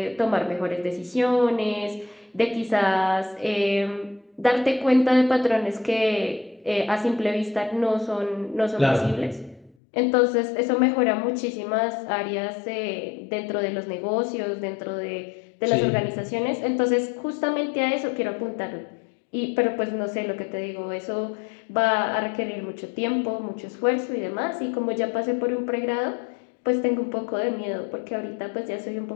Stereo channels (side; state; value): right; drops out; at 9.8 s